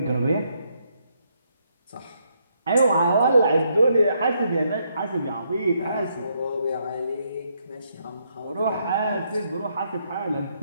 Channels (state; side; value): inverted; both; correlation -0.75